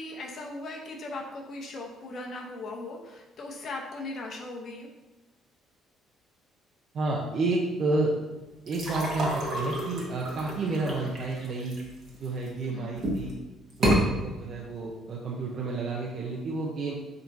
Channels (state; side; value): normal; both; correlation 0.63